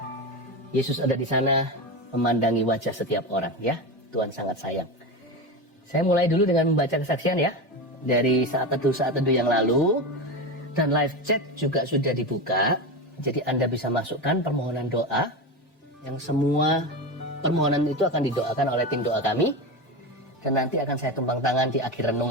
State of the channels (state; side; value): normal; both; correlation 0.20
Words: Yesus ada di sana, memandangi wajah setiap orang, ya. Tuhan sangat sayang. Saya mulai dulu dengan membaca kesaksian ya, dari saat teduh yang lalu. Dan live chat juga sudah dibuka. Jadi Anda bisa masukkan permohonan doa, yang semua permohonan itu akan didoakan oleh tim doa kami. Dan nanti akan saya tumpang tangan di akhir